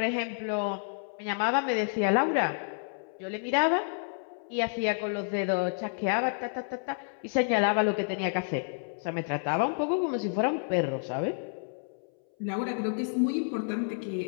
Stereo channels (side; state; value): right; silent; 58 dB below the other